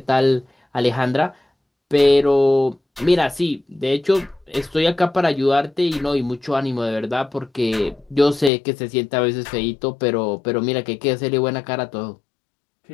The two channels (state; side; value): drops out; right; at 8.5 s